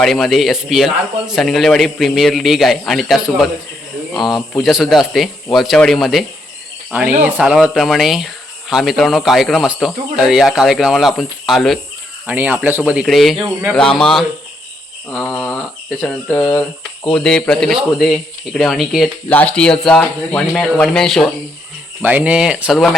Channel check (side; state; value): both; normal; correlation 0.76